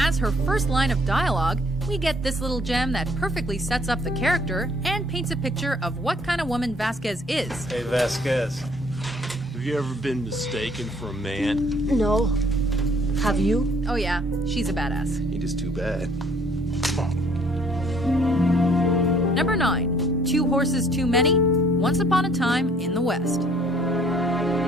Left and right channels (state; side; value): normal; both; correlation 0.60